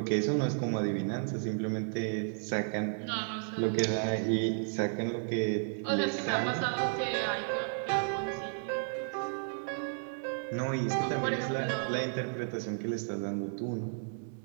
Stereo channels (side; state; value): left; silent; digital silence